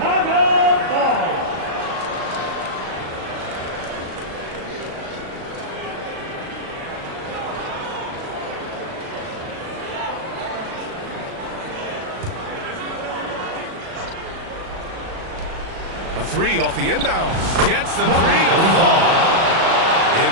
ball. A three off the inbounds. Gets the three to fall.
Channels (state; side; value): late; left; 37 ms